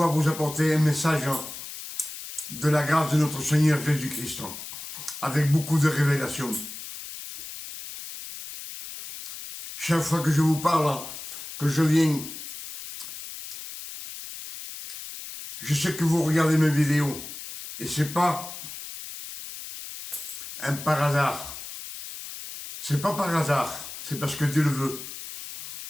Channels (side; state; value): left; noise; hiss, 10 dB below the sound